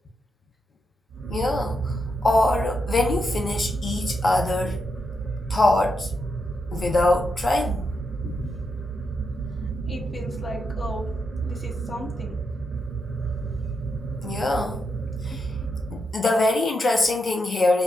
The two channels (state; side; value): normal; both; correlation 0.83